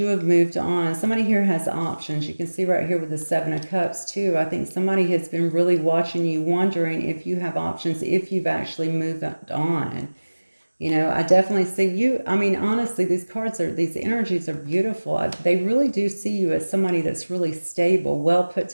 have moved on. Somebody here has options. You can see right here with the Seven of Cups too. I think somebody has been really watching you, wondering if you have options, if you've actually moved on. You know, I definitely see you. I mean, honestly, these energies are beautiful. They really do see you as somebody that's really stable, well put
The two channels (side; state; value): both; inverted; correlation -1.00